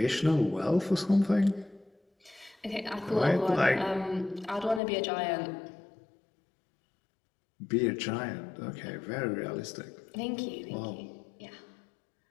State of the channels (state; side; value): drops out; right; at 4.8 s